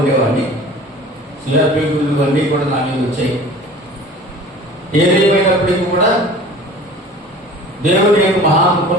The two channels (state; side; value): normal; both; correlation 0.43